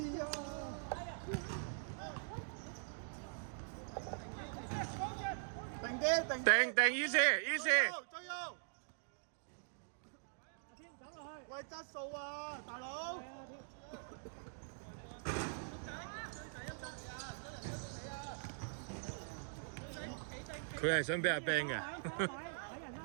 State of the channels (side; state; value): left; silent; digital silence